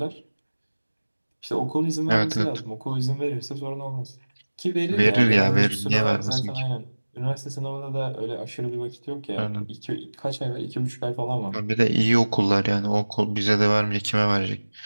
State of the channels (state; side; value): inverted; both; correlation -1.00